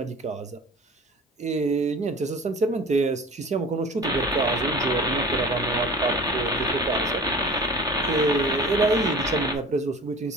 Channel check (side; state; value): both; normal; correlation 0.40